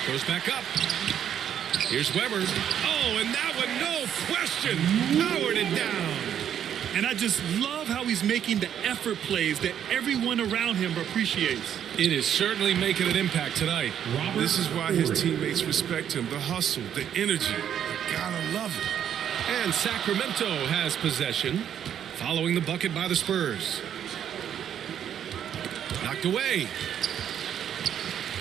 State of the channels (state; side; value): quieter; left; 9.5 dB